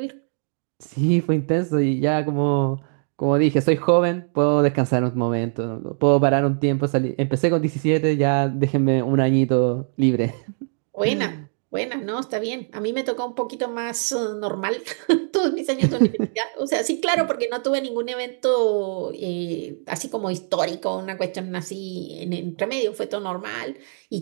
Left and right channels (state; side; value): silent; left; 61 dB below the other